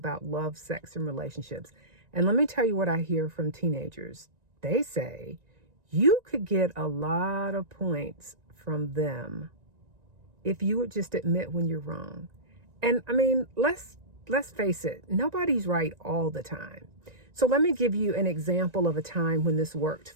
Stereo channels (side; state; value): left; late; 1.9 ms